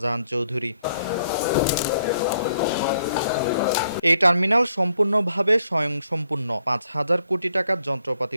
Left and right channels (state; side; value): inverted; both; correlation -0.72